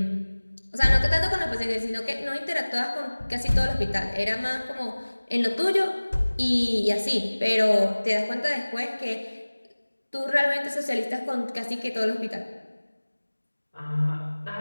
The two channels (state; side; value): inverted; both; correlation -1.00